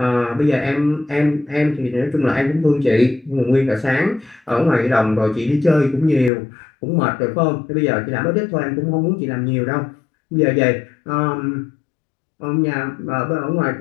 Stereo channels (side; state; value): right; drops out; at 6.3 s